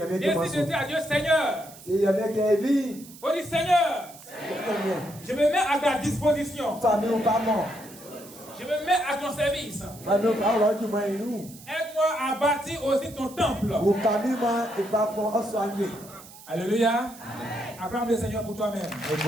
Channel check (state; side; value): noise; right; hiss, 19 dB below the sound